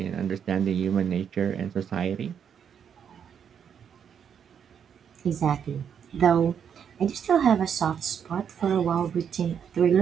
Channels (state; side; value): quieter; left; 7.9 dB